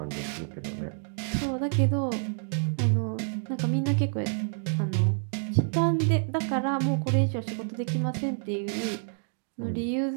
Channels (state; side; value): silent; left; 59 dB below the other